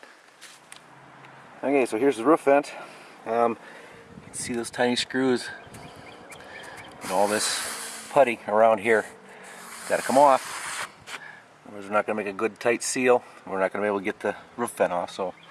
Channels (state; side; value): identical; both; correlation 1.00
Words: Okay, so here's the roof vent. You can see those tiny screws and all this putty around here. Got to come off. Otherwise we're not going to make a good tight seal. We're not going to be able to get the roof vent off. So